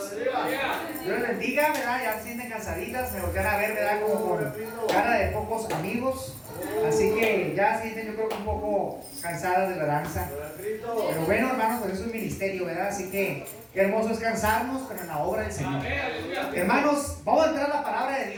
Dios les bendiga, ¿verdad? Ya se sienten cansaditas, me voltean a ver, ¿verdad? Como con cara de pocos amigos. Así que ya se sienten, yo creo que un poco cansadas de la danza. Pero bueno, hermanos, pues eso es un ministerio, ¿verdad? Así que qué hermoso es cansarnos, pero en la obra del Señor. Hermanos, vamos a entrar a la palabra de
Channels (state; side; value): identical; both; correlation 1.00